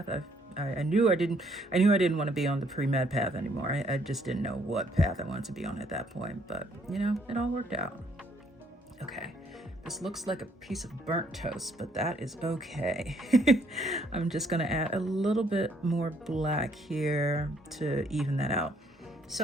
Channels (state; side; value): normal; both; correlation 0.67